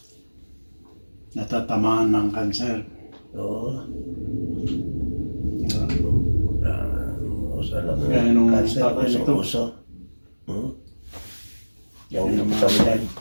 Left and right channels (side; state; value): both; inverted; correlation -1.00